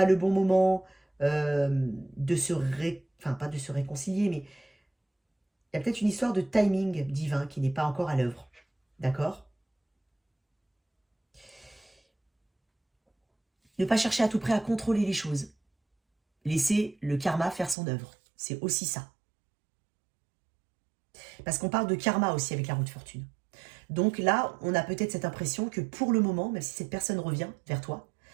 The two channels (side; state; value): left; drops out; at 17.8 s